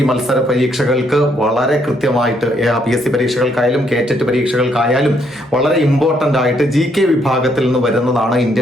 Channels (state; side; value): normal; both; correlation 0.72